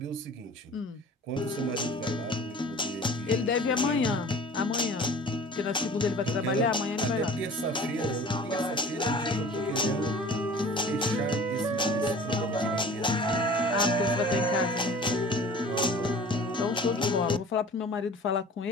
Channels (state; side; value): normal; both; correlation 0.44